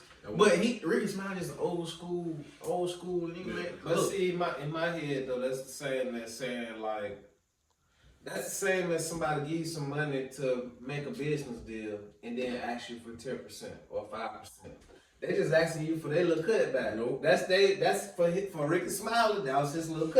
But Ricky Smiley is old school nigga, man. But see, in my head though, that's the same as saying like, that's the same as somebody give you some money to make a business deal and then ask you for 10% or 5%. They just asking you for their little cutback. Nope. That's for Ricky Smiley. That was his little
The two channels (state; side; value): identical; both; correlation 1.00